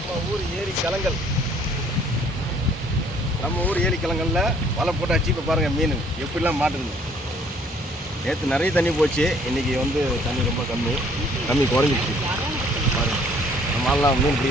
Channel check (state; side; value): normal; both; correlation 0.60